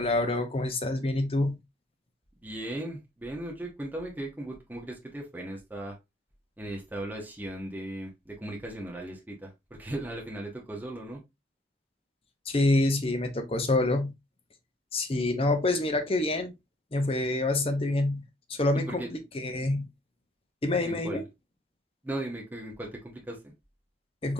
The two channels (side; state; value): both; normal; correlation 0.62